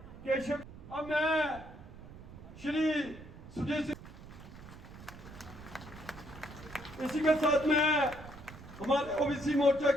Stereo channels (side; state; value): right; noise; rumble, 16 dB below the sound